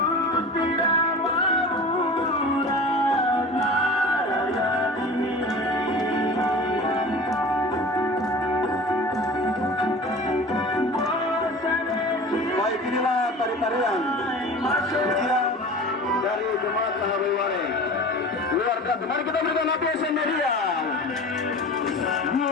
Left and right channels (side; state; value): both; normal; correlation 0.38